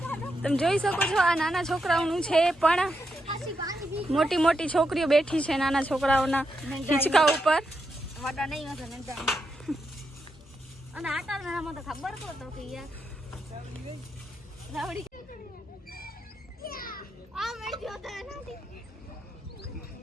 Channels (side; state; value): both; normal; correlation 0.83